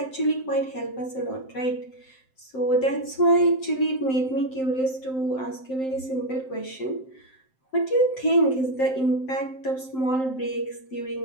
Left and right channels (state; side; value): late; right; 7.7 ms